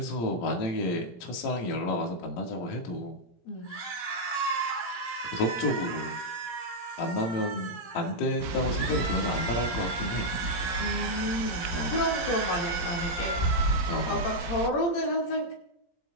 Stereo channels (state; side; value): late; right; 17 ms